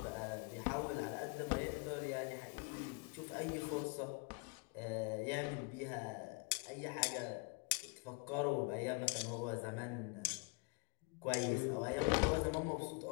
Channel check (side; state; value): right; quieter; 31.0 dB